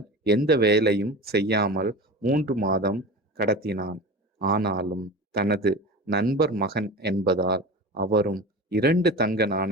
எந்த வேலையும் செய்யாமல் 3 மாதம் கடத்தினான். ஆனாலும் தனது நண்பர் மகன் என்பதால் அவரும் 2 தங்க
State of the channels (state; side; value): normal; both; correlation 0.32